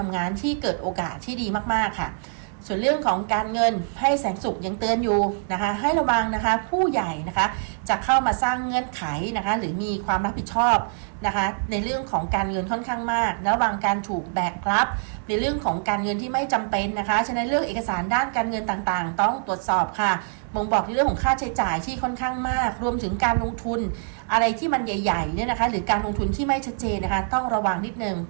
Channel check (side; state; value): left; silent; digital silence